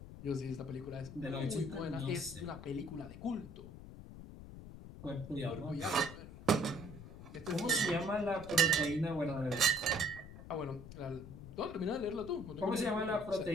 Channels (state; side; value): noise; left; rumble, 13 dB below the sound